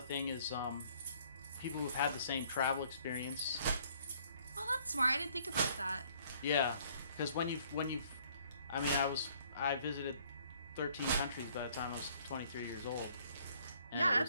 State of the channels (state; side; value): inverted; both; correlation -0.62